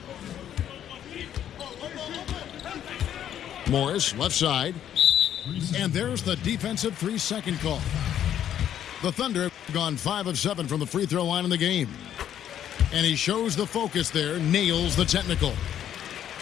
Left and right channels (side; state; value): right; quieter; 10.3 dB